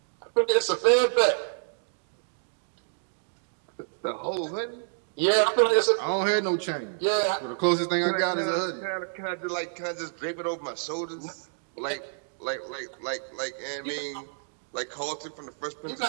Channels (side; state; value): left; silent; digital silence